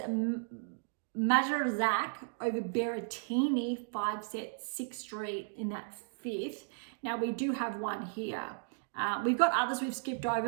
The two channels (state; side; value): silent; left; digital silence